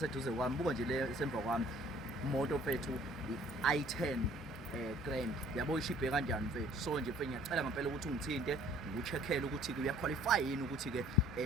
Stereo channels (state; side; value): normal; both; correlation 0.56